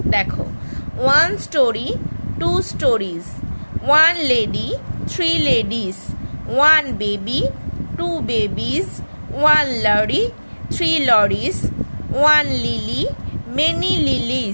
দেখো, 1 story, 2 stories, 1 lady, 3 ladies, 1 baby, 2 babies, 1 lorry, 3 lorries, 1 lily, many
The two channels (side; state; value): both; inverted; correlation -1.00